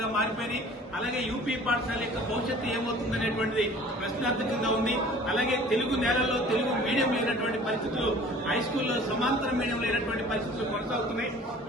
మారిపోయినాయి. అలాగే యూపీ పాఠశాల యొక్క భవిష్యత్తు ఏమవుతుందనేటువంటిది ప్రశ్నార్థకంగా ఉంది. అలాగే తెలుగు నేలల్లో తెలుగు మీడియం లేనటువంటి పరిస్థితులు, హై స్కూల్లో సమాంతర మీడియం లేనటువంటి పరిస్థితులు కొనసాగుతున్నాయి.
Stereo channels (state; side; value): normal; both; correlation 0.48